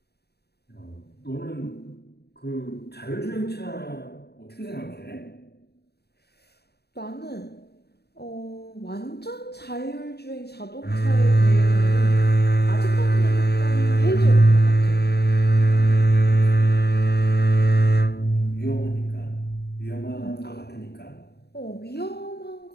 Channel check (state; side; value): late; right; 0.47 ms